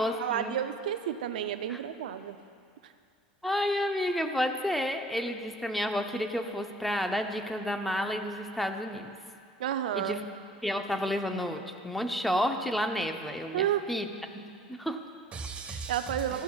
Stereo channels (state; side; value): normal; both; correlation 0.52